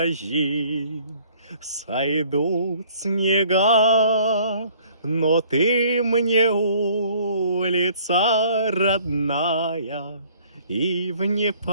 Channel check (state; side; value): inverted; both; correlation -0.57